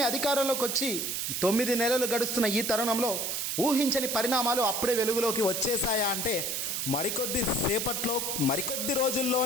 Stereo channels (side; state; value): right; noise; hiss, 1 dB below the sound